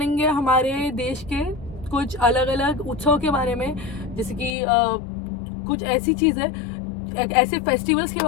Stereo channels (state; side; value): drops out; right; at 4.5 s